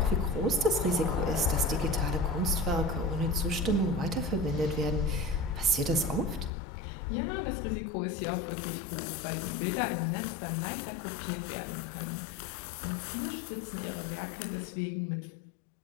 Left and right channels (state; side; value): drops out; right; at 6.5 s